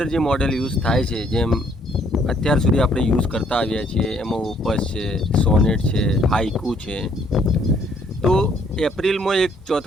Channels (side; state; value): both; normal; correlation 0.66